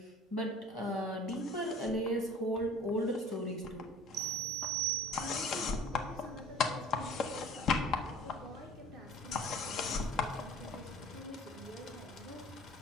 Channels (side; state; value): both; normal; correlation 0.47